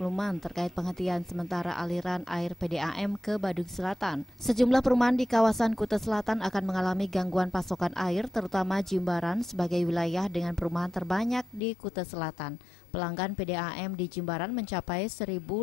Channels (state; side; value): drops out; right; at 11.6 s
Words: terkait penghentian sementara aliran air PDAM ke Badung Selatan. Sejumlah perumahan di kawasan Kuta Selatan akan mengalami gangguan pasokan air, terutama Jimbaran sebagai wilayah dengan perumahan terbanyak di Kuta Selatan. Pelanggan PDAM di Jimbaran mencapai 1.500